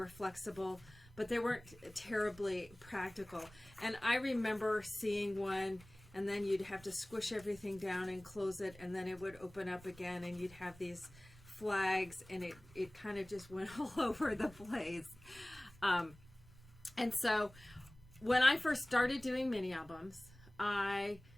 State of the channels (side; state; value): right; noise; rumble, 21 dB below the sound